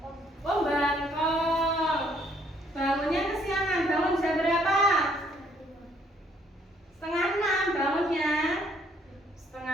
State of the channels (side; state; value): both; normal; correlation 0.66